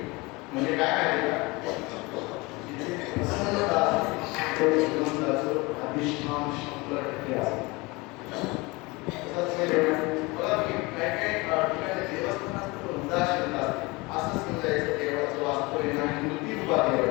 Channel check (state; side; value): quieter; right; 24.5 dB